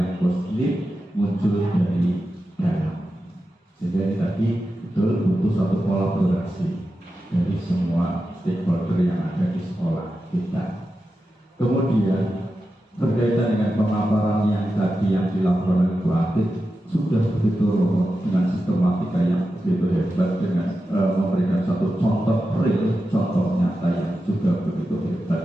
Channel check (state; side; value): normal; both; correlation 0.91